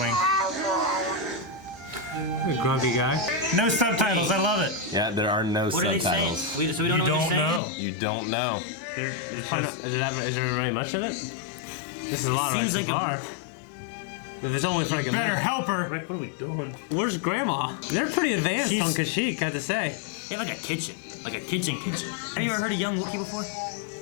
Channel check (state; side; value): drops out; right; at 7.6 s